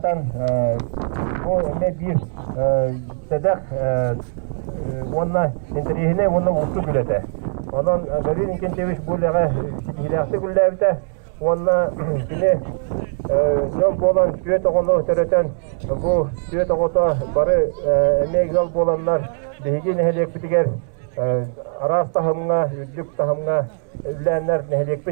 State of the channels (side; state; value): left; silent; 65 dB below the other